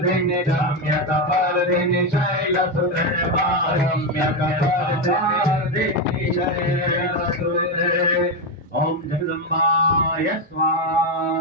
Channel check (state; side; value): normal; both; correlation 0.09